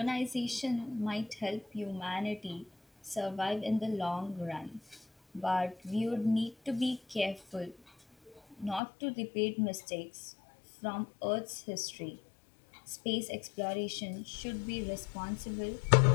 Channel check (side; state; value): right; drops out; at 8.8 s